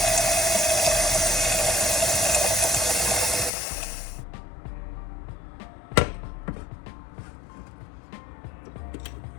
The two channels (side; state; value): right; drops out; at 3.5 s